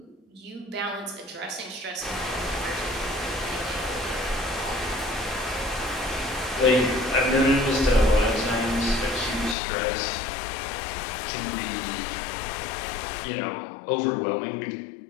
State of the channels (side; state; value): right; drops out; at 9.6 s